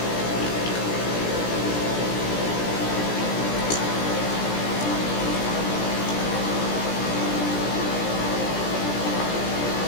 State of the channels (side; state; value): right; late; 17 ms